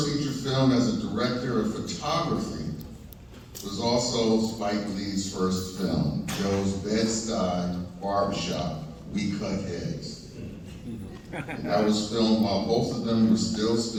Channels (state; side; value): identical; both; correlation 1.00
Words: feature film as a director of photography was also Spike Lee's first film, Joe's Bed-Stuy Barbershop, We Cut Heads. And that was filmed while both of them were still